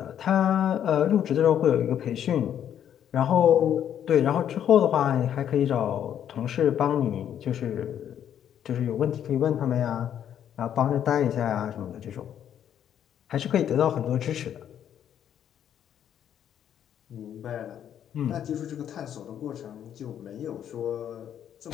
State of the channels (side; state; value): right; quieter; 9.7 dB